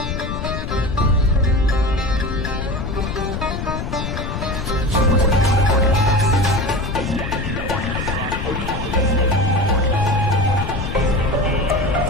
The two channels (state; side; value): noise; left; rumble, 5 dB below the sound